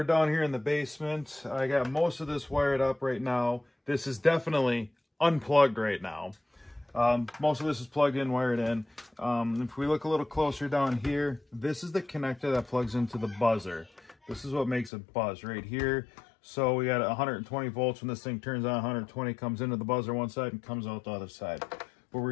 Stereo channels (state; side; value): drops out; right; at 14.9 s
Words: down here in the basement. I got most of this wired up right now. This is definitely unplugged right now. Most of this is plugged in, wired in. If we look a little closer down here, this is the connector that plugs into the buzzer. This is what makes it buzz right here. So we got 120 volts when this thing turns on, 120 comes into the buzzer one side and comes out the other side. What